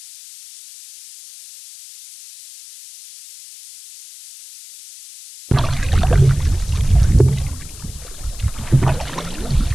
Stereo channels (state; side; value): noise; left; hiss, 17 dB below the sound